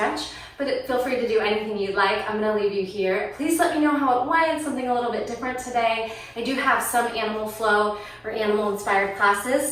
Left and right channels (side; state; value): both; identical; correlation 1.00